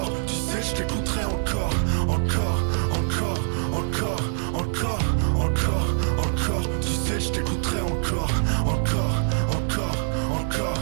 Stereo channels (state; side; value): silent; left; 62 dB below the other